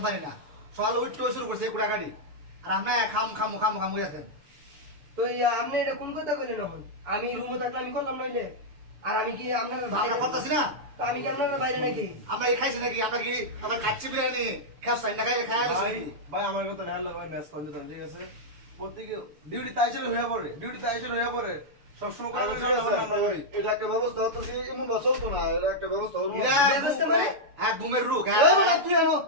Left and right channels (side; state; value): left; late; 6.9 ms